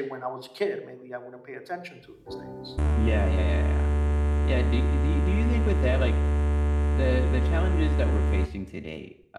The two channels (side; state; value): both; identical; correlation 1.00